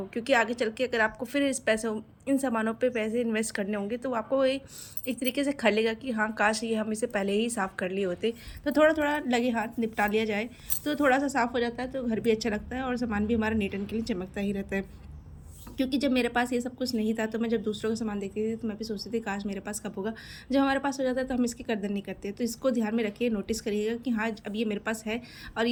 क्योंकि आगे चल के अगर आपको फिर इस पैसों इन सामानों पे पैसे इन्वेस्ट करने होंगे तो आपको एक तरीके से खलेगा कि हाँ, काश ये हम इसे पहले ही साफ़ कर लिए होते। तो थोड़ा थोड़ा लगे हाथ निपटा लिया जाए तो थोड़ा सा साफ़ हो जाता है, तो घर भी अच्छा लगता है और सामान भी हमारा नीट एंड क्लीन चमकता ही रहता है। क्योंकि जब मेरे पास ये सब कुछ नहीं था तो मैं जब दूसरों का सामान देखती थी तो मैं भी सोचती थी काश मेरे पास कब होगा। जब हमारे पास हो जाता है तो हम इसकी कदर नहीं करते। तो इसको ध्यान में रखिए, नोटिस करिएगा कि हाँ, अब ये मेरे पास है और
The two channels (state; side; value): identical; both; correlation 1.00